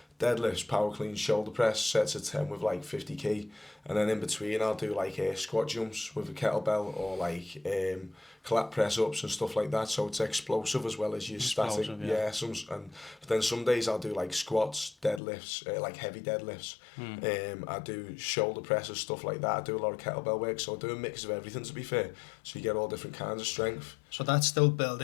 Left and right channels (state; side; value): drops out; right; at 15.2 s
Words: deadlifts, power clean, shoulder press, sets of 10 with like 50 kg, and then in between I'll do like squat jumps with a kettlebell, or like collapse press ups and stuff like that, so it's explosive as well as your static. Yeah, but then some days I'll do like squats, deadlifts, like heavy deadlifts. I do shoulder presses, stuff like that. I do a lot of kettlebell work, so I do a mix of everything, to be fair, so you get all different kinds of strength. So that's still